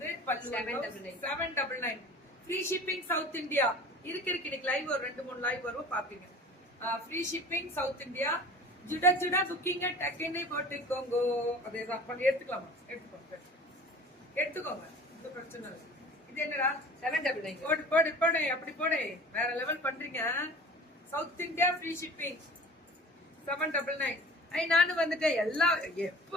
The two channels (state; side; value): normal; both; correlation 0.42